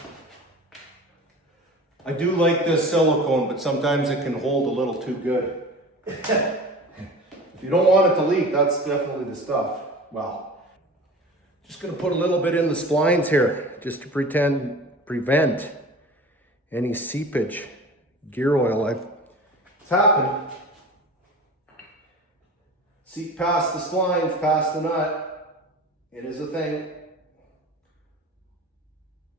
I do like this silicone, but sometimes it can hold a little too good. If you don't want it to leak, that's definitely the stuff. Well, just gonna put a little bit in the splines here, just to prevent any seepage. Gear oil, it's happened. Seep past the splines, past the nut. It is a thing.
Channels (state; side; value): normal; both; correlation 0.37